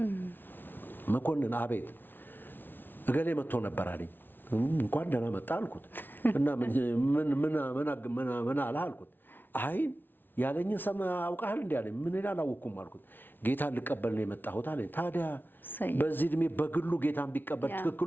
መኮንን አቤት፣ እገሌ መጥቶ ነበር አለኝ። እንኳን ደህና መጣ አልኩት። እና ምን አለ አልኩት። አይ ያለኝን ሰማ አውቃለሁ እንዴ አለኝ። ምን ይላል አላወኩም አልኩት። ጌታን ልቀበል ነው የመጣሁት አለኝ። ታዲያ በዚህ እድሜ በግሉ ጌታን ቢቀበል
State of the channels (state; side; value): late; right; 0.096 ms